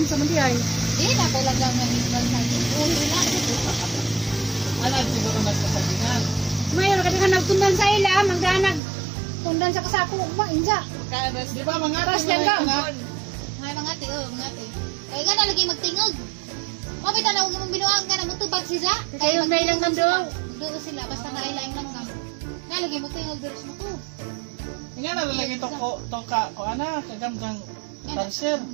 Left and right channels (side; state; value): left; drops out; at 8.8 s